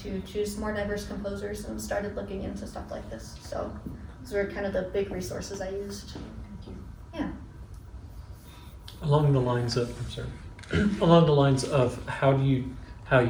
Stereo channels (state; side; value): identical; both; correlation 1.00